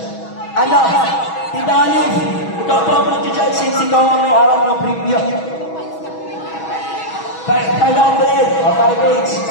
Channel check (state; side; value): late; right; 6.2 ms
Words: Ano? Tita Alif, ikaw po ang mag-judge since ikaw ang may hawak ng preview. 500 o 5 each.